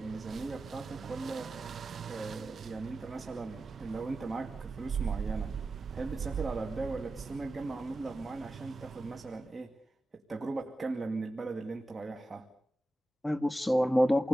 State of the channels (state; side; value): normal; both; correlation 0.94